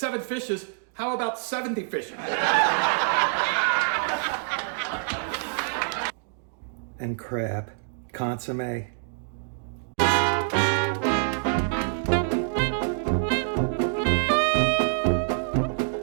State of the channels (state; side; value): silent; left; digital silence